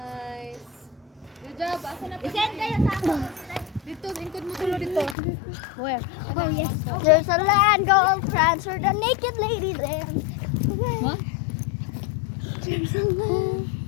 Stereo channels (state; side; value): drops out; right; at 5.2 s